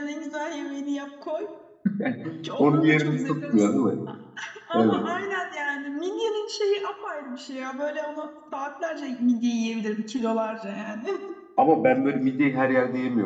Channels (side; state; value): both; identical; correlation 1.00